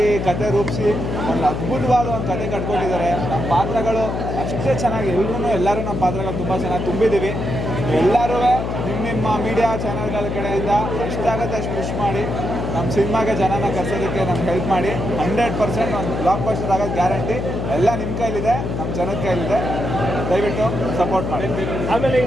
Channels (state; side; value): noise; left; hum, 3 dB below the sound